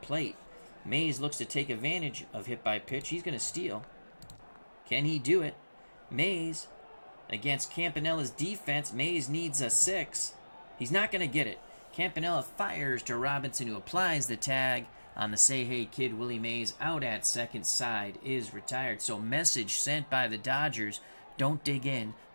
plate. Mays looks to take advantage of hit by pitch. He's going to steal. Can he do it? Mays, against Campanella's defense, Mays needs a 6. He's not going to get it. Campanella fires to Robinson, who applies the tag on the Say Hey Kid. Willie Mays out at second, side is retired. So message sent by the Dodgers, don't dig in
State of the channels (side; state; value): both; inverted; correlation -1.00